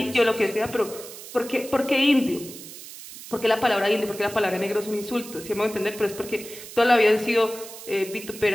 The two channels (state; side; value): noise; right; hiss, 14 dB below the sound